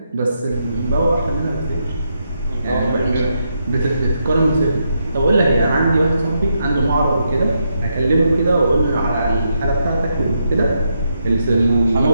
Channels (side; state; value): both; inverted; correlation -0.81